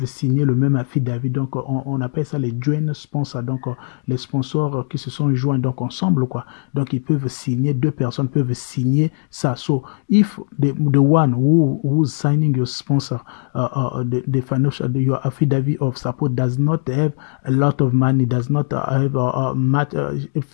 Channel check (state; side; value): silent; right; digital silence